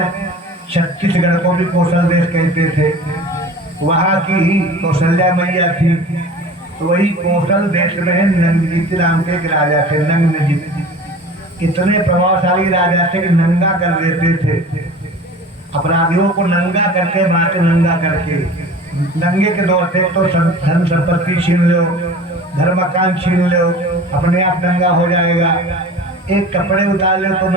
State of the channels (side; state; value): both; normal; correlation 0.40